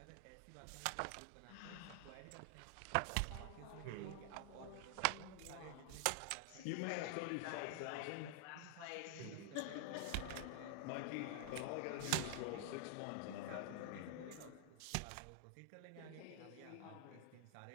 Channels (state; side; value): different; both; correlation 0.00